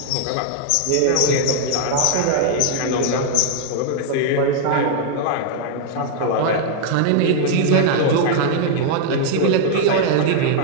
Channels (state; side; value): different; both; correlation 0.00